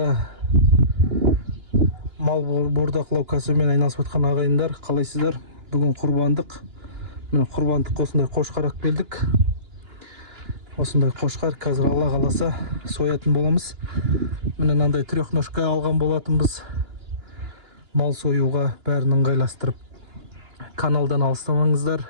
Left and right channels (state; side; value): late; left; 2.9 ms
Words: мал бордақылау кәсібімен айналысып жатқан ағайындар, қалайсыздар? Бүгін құрбандық. Міне құрбандық осындай қошқар алып келдік. Осындай қошқар қазір Алла қаласа соятын боламыз. Міне мынандай трехножка алған болатынбыз. Мал союға бәрін ыңғайластырып. Каналдан алыстамаңыздар.